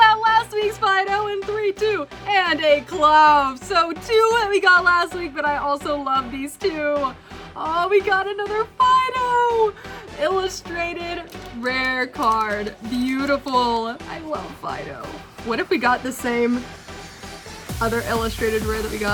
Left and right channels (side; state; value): both; identical; correlation 1.00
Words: out last week's Fido in 3, 2, and a Clove. So 2 that we got last week, but I also love these 2. Oh, we got another Fido! Illustrated rare card. Beautiful. I love Fido. What if we got the same other illustrated rare that we